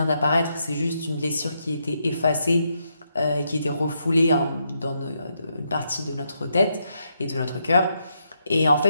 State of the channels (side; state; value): both; inverted; correlation -0.79